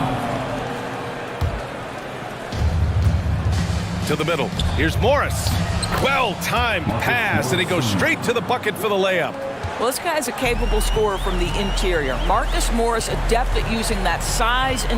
To the middle. Here's Morris. Well-timed pass, and he goes straight to the bucket for the layup. Well, this guy's a capable scorer from the interior. Marcus Morris, adept at using that size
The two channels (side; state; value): both; identical; correlation 1.00